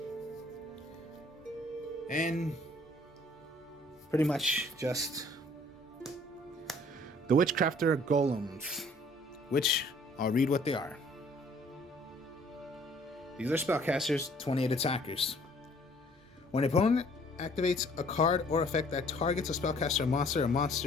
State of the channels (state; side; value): normal; both; correlation 0.58